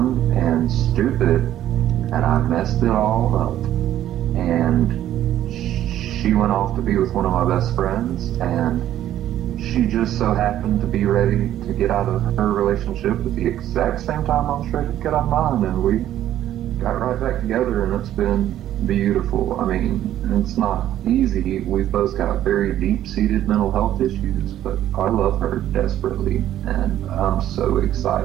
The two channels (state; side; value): quieter; left; 12.2 dB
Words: and stupid, and I messed it all up. And she went off to be with one of my best friends, and she just so happened to be ready to get out of her relationship at the exact same time I was ready to get out of mine, and we got right back together, and it's been beautiful. I mean, it's not easy. We've both got very deep-seated mental health issues, but I love her desperately, and I'm so